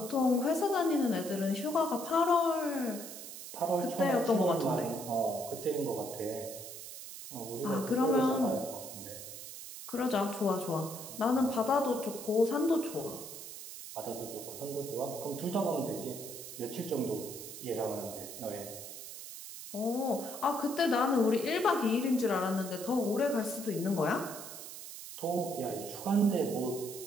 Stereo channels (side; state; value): right; noise; hiss, 11 dB below the sound